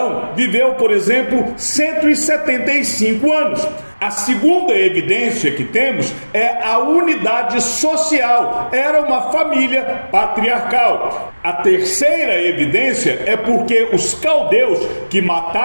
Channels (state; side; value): inverted; both; correlation -1.00